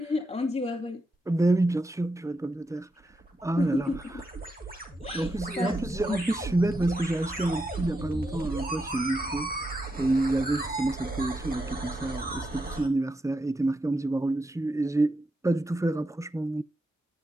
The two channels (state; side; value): normal; both; correlation 0.84